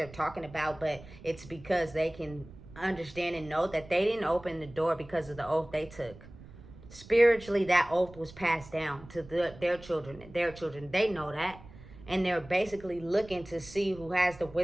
talking about, but it's because they can understand and know that they didn't open the door because of the oath they took. Spiritually, that oath was passed down to their children. They know that. And they're basically looking to see who has the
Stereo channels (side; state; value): right; noise; rumble, 19 dB below the sound